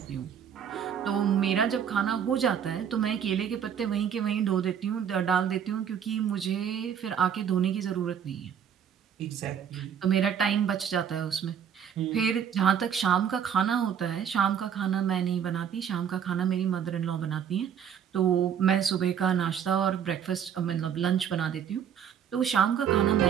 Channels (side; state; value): left; quieter; 8.3 dB